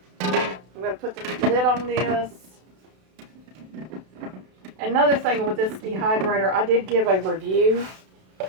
I'm going to put the lid on this. Another thing with this dehydrator, I did give a review.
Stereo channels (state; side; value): late; left; 32 ms